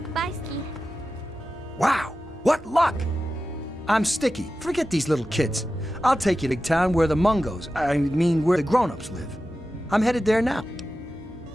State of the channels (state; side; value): normal; both; correlation 0.93